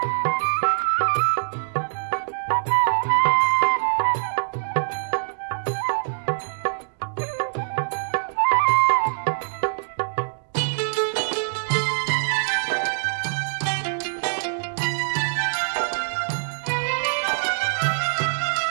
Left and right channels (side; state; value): left; silent; digital silence